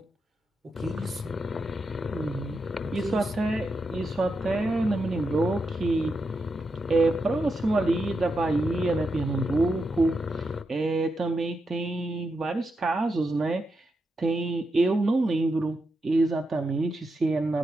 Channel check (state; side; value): normal; both; correlation 0.85